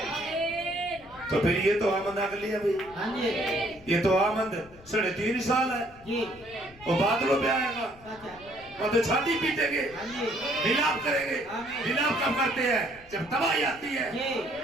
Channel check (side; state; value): left; noise; rumble, 23 dB below the sound